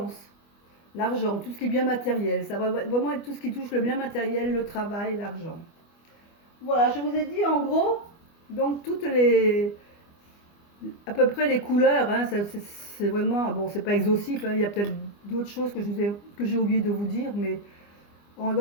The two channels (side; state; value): right; late; 25 ms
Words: l'argent, tout ce qui est bien matériel. Ça va vraiment être tout ce qui touche le bien matériel, le travail, l'argent. Voilà, je vous ai dit en gros, donc à peu près les couleurs, hein, c'est vraiment, bon, c'est pas exhaustif, hein, il y a peut-être d'autres choses que j'ai oublié de vous dire, mais